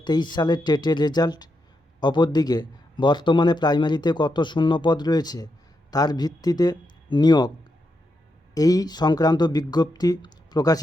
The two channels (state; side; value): normal; both; correlation 0.84